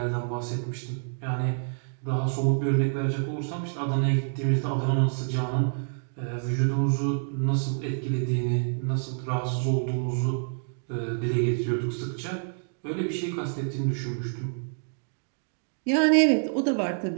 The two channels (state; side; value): silent; left; digital silence